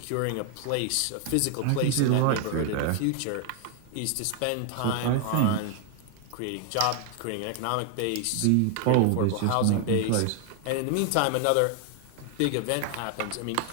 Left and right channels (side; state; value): both; different; correlation 0.00